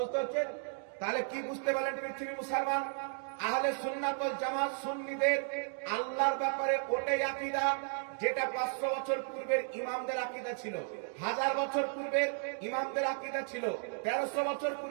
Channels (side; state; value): left; silent; 55 dB below the other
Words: তাহলে কি বুঝতে পারলেন পৃথিবীর মুসলমান? আহলে সুন্নাত ওয়াল জামাত সুন্নিদের আল্লাহর ব্যাপারে ওটাই আকীদা যেটা 500 বছর পূর্বের ইমামদের আকীদা ছিল, 1000 বছর পূর্বের ইমামদের আকীদা ছিল, 1300 বছর